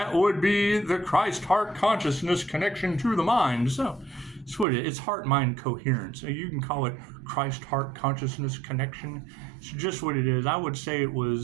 would be the Christ Heart Consciousness connection to the mind. So it's what it is. It's heart-mind coherence. So you can call it Christ Heart Consciousness connection. It's just what it is. I would say it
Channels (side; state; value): left; drops out; at 4.7 s